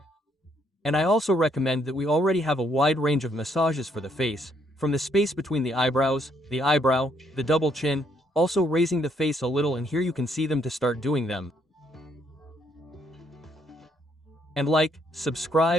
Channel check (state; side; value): normal; both; correlation 0.71